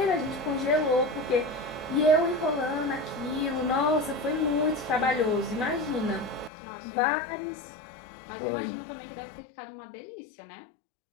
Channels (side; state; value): right; drops out; at 6.5 s